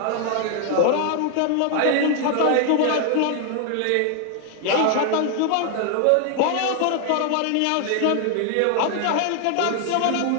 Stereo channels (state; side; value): different; both; correlation 0.00